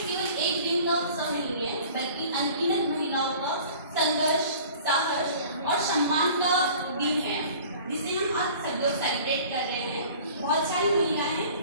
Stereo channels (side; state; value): both; inverted; correlation -0.46